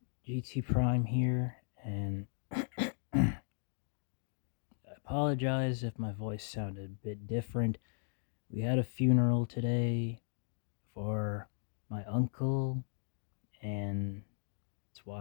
GT Prime here, and I apologize if my voice sounded a bit different. We had a funeral today for my uncle, and that's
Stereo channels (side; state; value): right; silent; digital silence